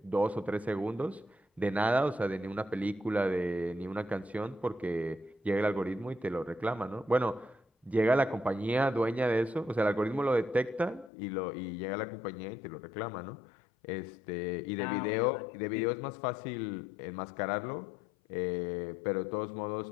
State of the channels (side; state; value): right; drops out; at 11.1 s